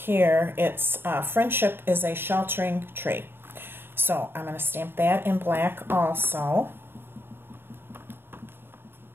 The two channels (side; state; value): left; late; 0.11 ms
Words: It's friendship is a sheltering tree. So I'm going to stamp that in black also.